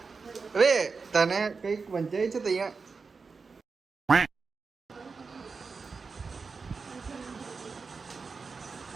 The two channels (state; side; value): quieter; left; 4.7 dB